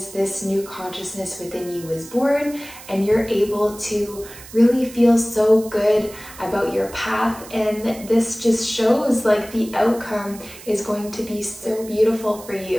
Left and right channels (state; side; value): noise; right; hiss, 17 dB below the sound